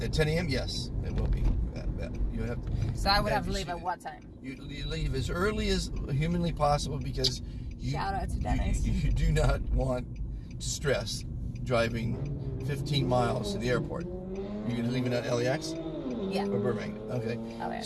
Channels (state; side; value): identical; both; correlation 1.00